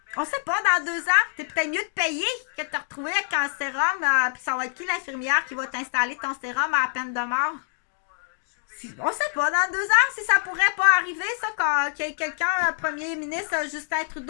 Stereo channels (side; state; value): right; silent; digital silence